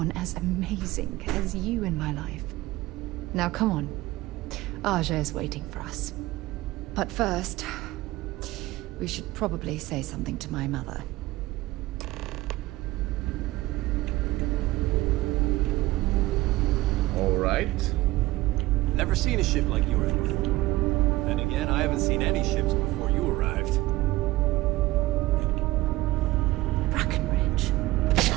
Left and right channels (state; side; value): quieter; left; 18.5 dB